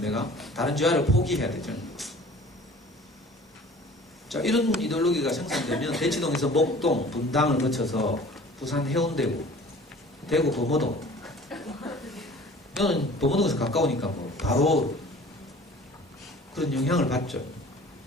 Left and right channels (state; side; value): normal; both; correlation 0.46